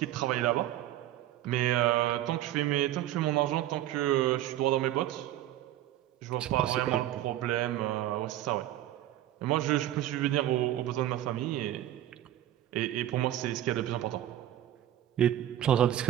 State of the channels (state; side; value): quieter; left; 12.9 dB